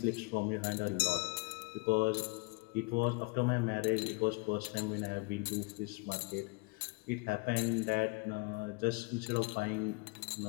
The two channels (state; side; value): quieter; right; 28.3 dB